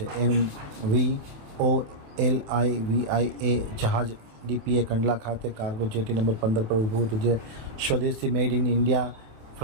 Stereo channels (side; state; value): left; late; 27 ms